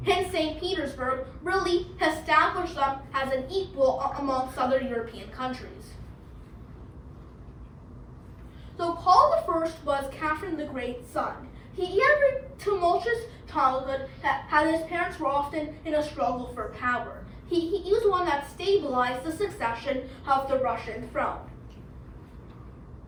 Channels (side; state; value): both; identical; correlation 1.00